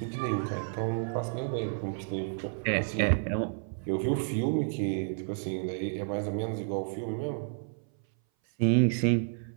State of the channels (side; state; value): left; silent; 57 dB below the other